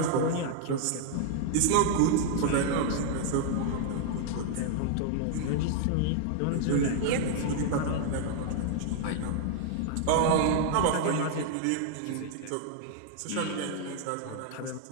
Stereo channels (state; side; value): different; both; correlation -0.01